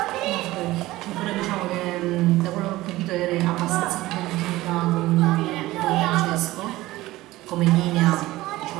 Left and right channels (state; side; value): quieter; left; 17.7 dB